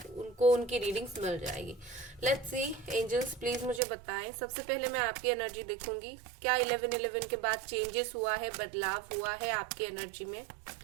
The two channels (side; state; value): left; drops out; at 3.8 s